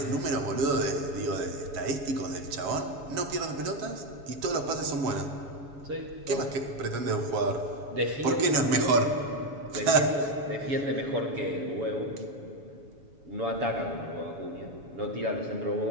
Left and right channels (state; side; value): late; left; 7.1 ms